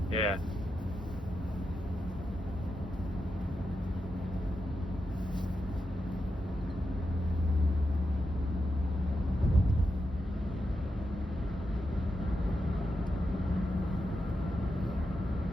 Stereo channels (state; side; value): normal; both; correlation 0.87